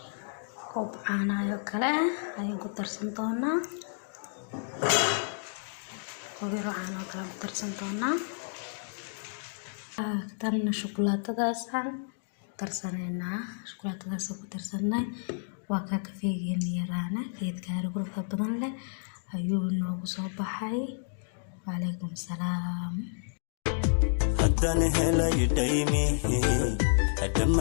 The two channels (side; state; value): right; silent; digital silence